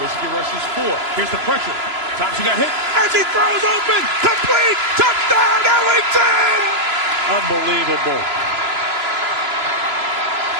rushes 4. Here's the pressure. Thompson got hit as he throws open. Complete. Touchdown, Ellington! Unbelievable.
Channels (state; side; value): late; left; 3.0 ms